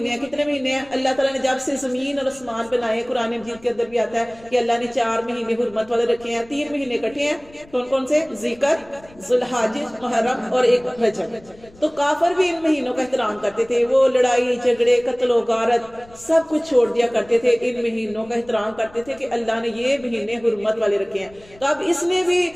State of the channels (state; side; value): noise; left; rumble, 25 dB below the sound